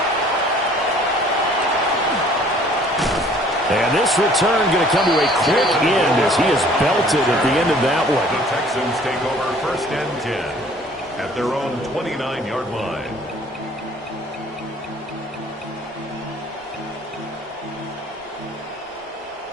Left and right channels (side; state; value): both; normal; correlation 0.55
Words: And this return going to come to a quick end as he is belted at the end of that one. The Texans take over 1st and 10 at their own 29-yard line.